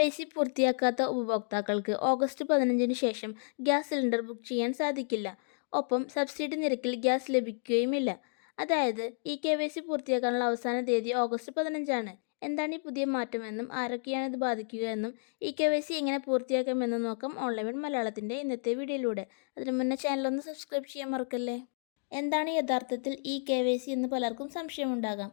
പൂർത്തിയാക്കാത്ത ഉപഭോക്താക്കൾക്ക് ഓഗസ്റ്റ് 15-ന് ശേഷം ഗ്യാസ് സിലിണ്ടർ ബുക്ക് ചെയ്യാൻ സാധിക്കില്ല. ഒപ്പം സബ്സിഡി നിരക്കിൽ ഗ്യാസ് ലഭിക്കുകയുമില്ല. അതായത് KYC പൂർത്തിയാക്കാനുള്ള അവസാന തീയതി ഓഗസ്റ്റ് 15-ആണ്. എന്താണ് ഈ പുതിയ മാറ്റമെന്നും ആരൊക്കെയാണ് ഇത് ബാധിക്കുക എന്നും KYC എങ്ങനെ പൂർത്തിയാക്കാമെന്നും നോക്കാം ഓൺലൈൻ മലയാളത്തിൻ്റെ ഇന്നത്തെ വീഡിയോയിലൂടെ. അതിനു മുന്നേ ചാനലൊന്ന് സബ്സ്ക്രൈബ് ചെയ്യാൻ മറക്കല്ലേ. എന്താണ് യഥാർത്ഥത്തിൽ KYC എന്ന് പലർക്കും സംശയമുണ്ടാകാം.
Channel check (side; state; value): right; silent; digital silence